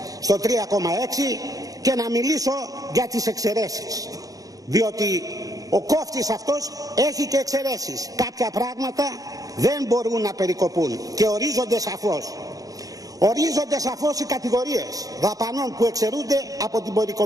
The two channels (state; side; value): late; left; 0.17 ms